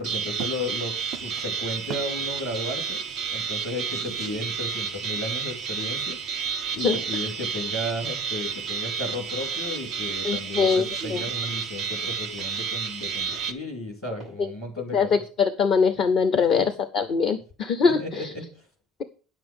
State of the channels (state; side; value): normal; both; correlation 0.48